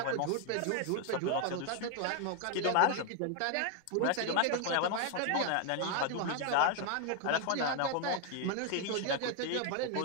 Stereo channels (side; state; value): both; different; correlation 0.00